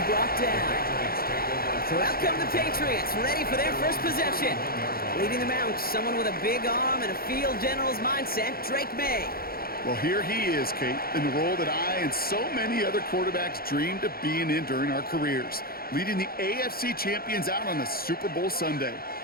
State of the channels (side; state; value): right; late; 0.44 ms